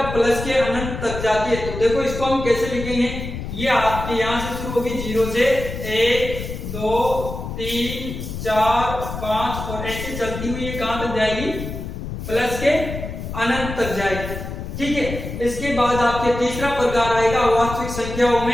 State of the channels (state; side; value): noise; left; rumble, 7 dB below the sound